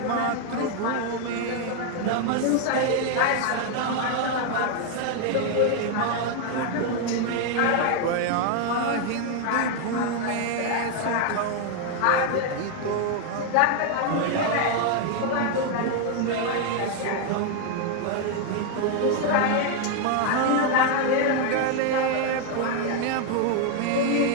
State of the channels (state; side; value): different; both; correlation 0.00